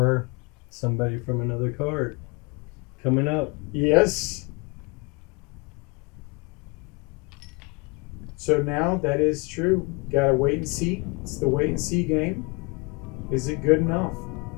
somebody from another card coming up. Yes. So now that is true. Gotta wait and see. It's the wait and see game. Is it good enough?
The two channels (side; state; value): right; quieter; 29.0 dB